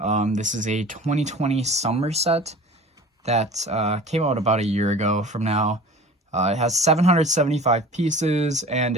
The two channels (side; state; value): both; normal; correlation 0.41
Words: This is a 2020 summer set that came out about a year ago from now. It has 775 pieces and